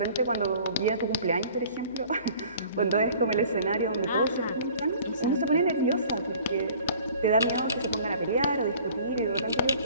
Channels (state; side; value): inverted; both; correlation -0.50